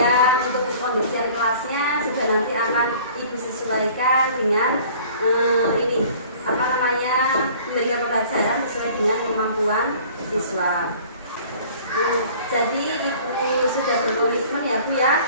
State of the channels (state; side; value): inverted; both; correlation -0.49